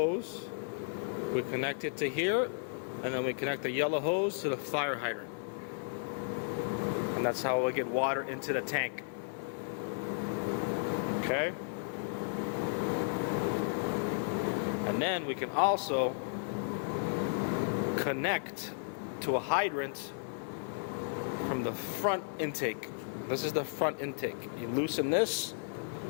we connect it to here, and then we connect the yellow hose to the fire hydrant. And that's how we get water into the tank. Okay? And then we can also connect to a hydrant from the front intake. This is the front intake. You loosen this.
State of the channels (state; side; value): silent; right; digital silence